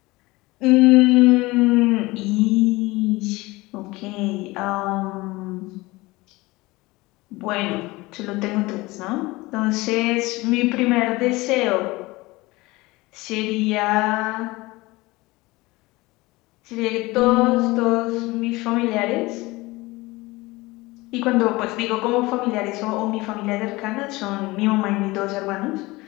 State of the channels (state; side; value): quieter; right; 21.4 dB